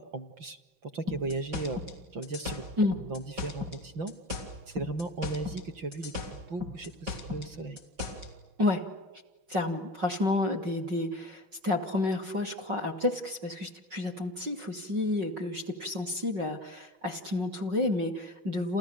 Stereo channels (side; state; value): left; late; 5.4 ms